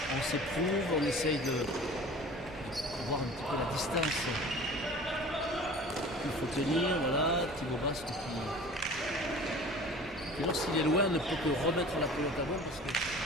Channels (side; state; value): both; normal; correlation 0.42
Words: On s'éprouve, on essaye de voir un petit peu la distance qu'il faut tenir. Voilà, Thibaut Basque qui lorsqu'il est loin ne peut que remettre la pelote à bord parce que,